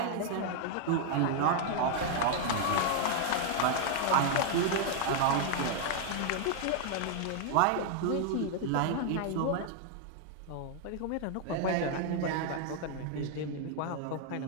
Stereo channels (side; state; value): both; different; correlation 0.00